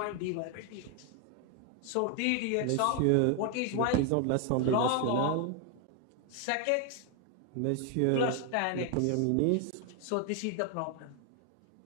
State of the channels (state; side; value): different; both; correlation 0.01